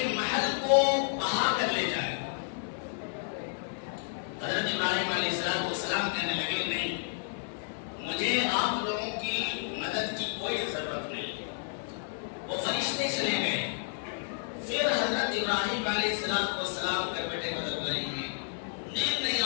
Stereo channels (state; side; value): silent; right; 57 dB below the other